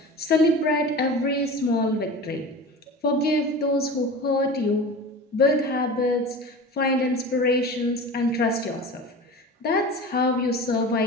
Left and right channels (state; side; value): normal; both; correlation 0.34